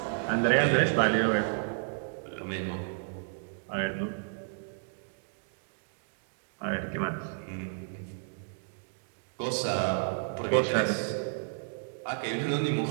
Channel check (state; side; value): silent; left; digital silence